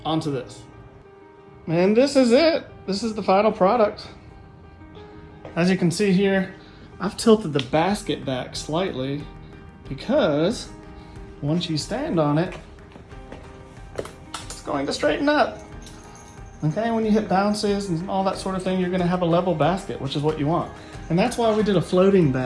onto this. And this is it. This is the final product. As you can see here, I've tilted the basket back slightly because once you stand on it, it's going to straighten up. Okay, when you hit bounces and all that sort of thing, you're gonna have a level basket, which is what you want. And that's why we did a floating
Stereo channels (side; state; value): both; identical; correlation 1.00